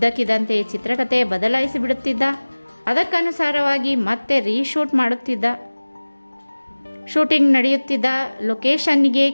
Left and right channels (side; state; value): both; inverted; correlation -1.00